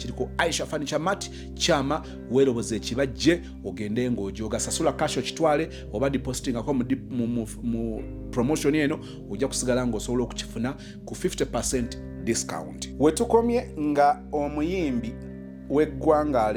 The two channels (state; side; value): identical; both; correlation 1.00